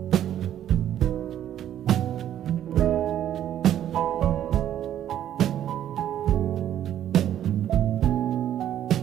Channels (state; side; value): quieter; left; 11.1 dB